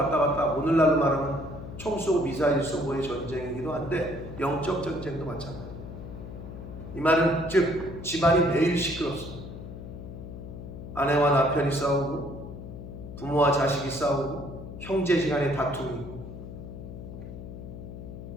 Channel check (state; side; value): noise; left; hum, 11 dB below the sound